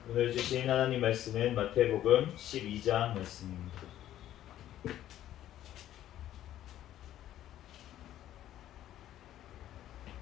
오늘 주신 하나님 말씀은 마태복음 12장 말씀입니다.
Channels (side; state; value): right; quieter; 12.4 dB